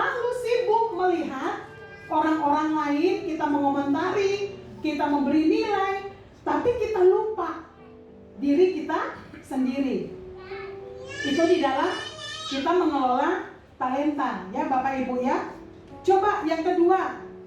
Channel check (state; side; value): identical; both; correlation 1.00